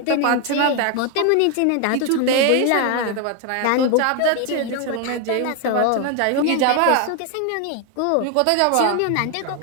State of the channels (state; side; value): different; both; correlation 0.01